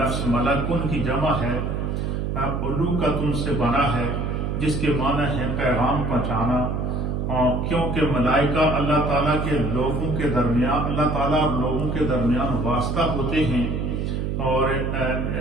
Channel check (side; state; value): right; noise; hum, 1 dB below the sound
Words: ملکن کی جمع ہے، علوکتن سے بنا ہے، جس کے معنی ہے پیغام پہنچانا، کیونکہ ملائکہ اللہ تعالیٰ کے لوگوں کے درمیان، اللہ تعالیٰ اور لوگوں کے درمیان واسطہ ہوتے ہیں، اور